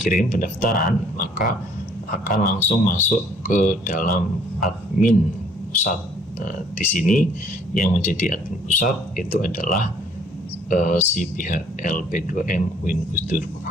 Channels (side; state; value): both; normal; correlation 0.60